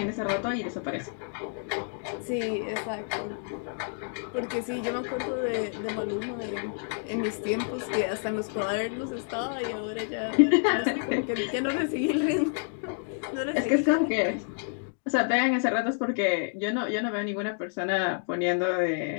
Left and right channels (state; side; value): silent; right; 59 dB below the other